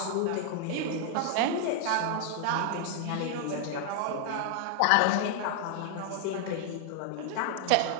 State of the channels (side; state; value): both; different; correlation 0.00